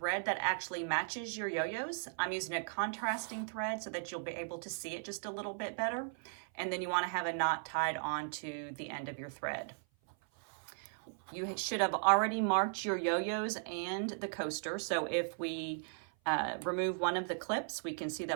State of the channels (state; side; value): silent; left; 53 dB below the other